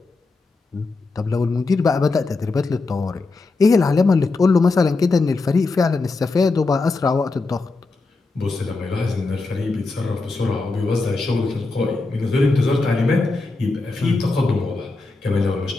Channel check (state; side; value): quieter; right; 3.6 dB